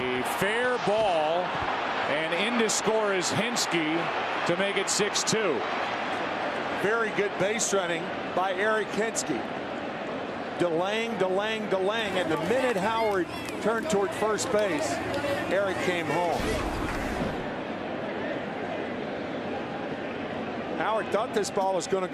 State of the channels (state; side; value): identical; both; correlation 1.00